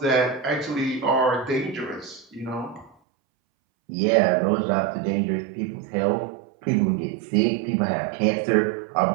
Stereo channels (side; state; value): left; drops out; at 3.0 s